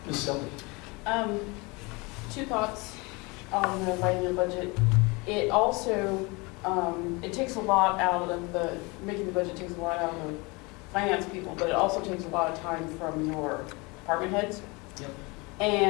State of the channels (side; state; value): right; quieter; 26.7 dB